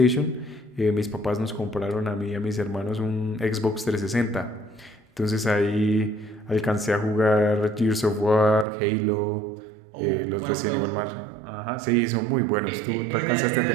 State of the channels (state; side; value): drops out; left; at 8.7 s